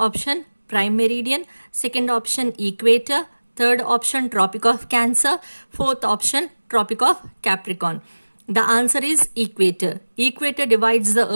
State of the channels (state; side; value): inverted; both; correlation -1.00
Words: prime meridian, second option equator, third option Tropic of Cancer, fourth option Tropic of Capricorn. The answer is equator. Equator divides the